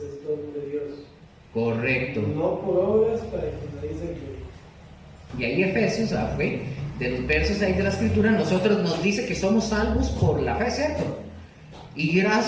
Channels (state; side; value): identical; both; correlation 1.00